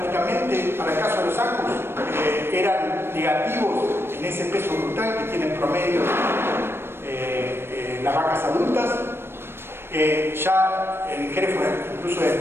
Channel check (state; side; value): late; left; 0.12 ms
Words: para el caso de los Angus, eran negativos en ese peso brutal que tienen promedio las vacas adultas. Ya en Hereford incluso el